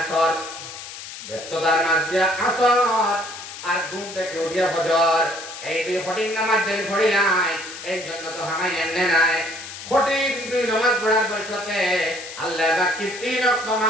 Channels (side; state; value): left; noise; hiss, 12 dB below the sound